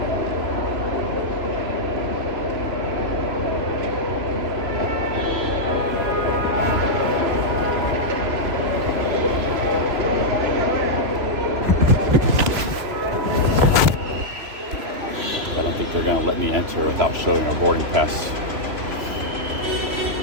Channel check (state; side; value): late; left; 3.0 ms